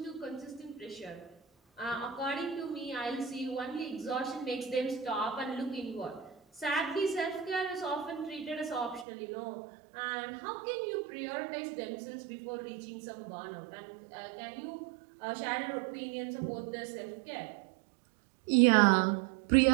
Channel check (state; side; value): drops out; left; at 9.1 s